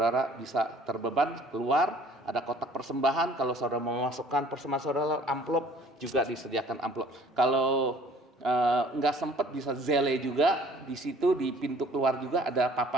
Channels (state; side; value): normal; both; correlation 0.53